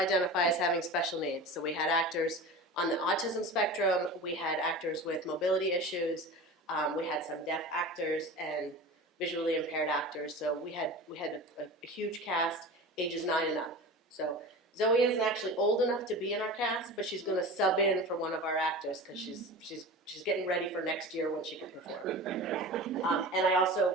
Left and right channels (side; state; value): both; normal; correlation 0.33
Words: as having special needs. So we had actors on the autism spectrum, we had actors with mobility issues, we had some deaf actors and visually impaired actors. So we had a huge cast, ages 9 and up. So Zoe isn't actually old enough to be in our cast, but she's going to sub in for one of our actors because she's getting ready for next year when she can perform. And I